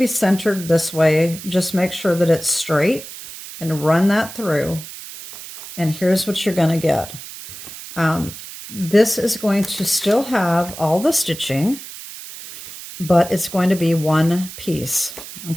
centered this way. Just make sure that it's straight and run that through. And here's what you're going to get. This is going to still have all the stitching, but it's going to be one piece,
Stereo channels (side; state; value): right; noise; hiss, 13 dB below the sound